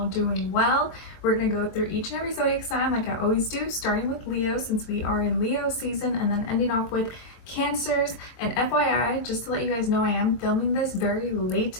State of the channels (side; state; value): right; late; 23 ms